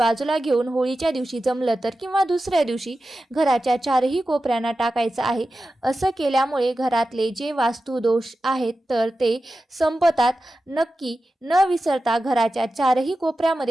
घेऊन होळीच्या दिवशी जमलं तर, किंवा दुसऱ्या दिवशी घराच्या चारही कोपऱ्यांना टाकायचं आहे. असं केल्यामुळे घरातले जे वास्तुदोष आहेत तर ते संपतात. नक्की न विसरता घराच्या चारही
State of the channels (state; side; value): normal; both; correlation 0.93